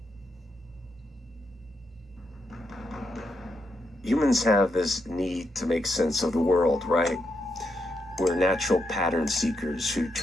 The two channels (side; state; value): both; normal; correlation 0.82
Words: Humans have this need to make sense of the world, right? We're natural pattern seekers who